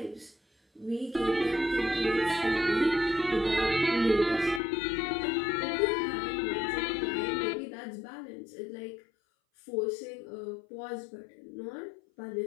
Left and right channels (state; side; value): drops out; right; at 4.6 s